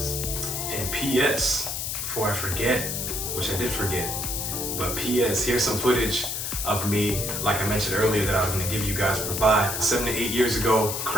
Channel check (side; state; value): left; noise; hiss, 3 dB below the sound